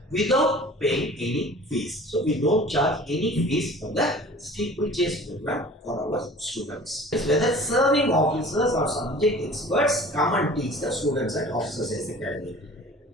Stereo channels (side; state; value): both; normal; correlation 0.45